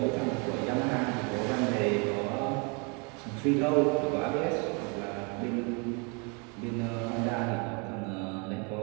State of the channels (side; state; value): left; quieter; 33.1 dB